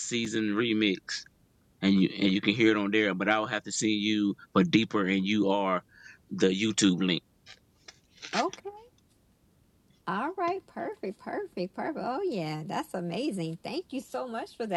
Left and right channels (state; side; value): identical; both; correlation 1.00